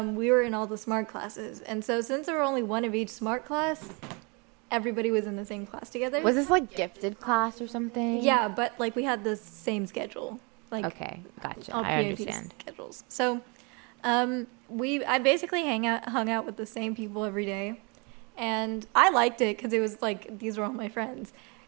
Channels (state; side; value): quieter; left; 31.2 dB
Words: we were in all the smart classes. And so since there were only one of each smart class, everybody was in the same class together. Was this like gifted class or something? Yeah, but like we had the same schedule. Like okay, gotcha. All I understand. Schedules. So, I basically hung out with the same people every day, and I liked it because it was like these were all my friends.